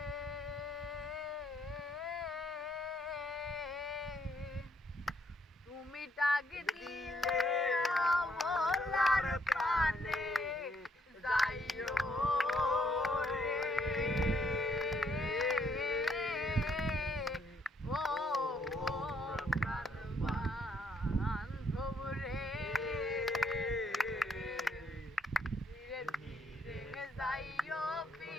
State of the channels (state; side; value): normal; both; correlation 0.71